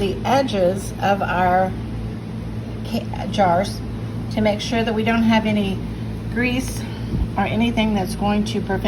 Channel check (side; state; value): both; identical; correlation 1.00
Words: edges of our jars to make sure that we don't have any grease or anything that's going to